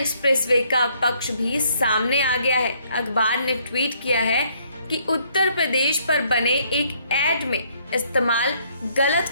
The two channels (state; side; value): inverted; both; correlation -0.67